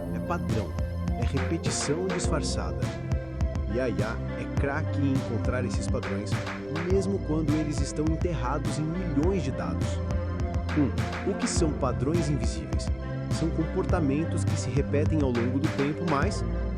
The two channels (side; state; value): right; noise; rumble, 24 dB below the sound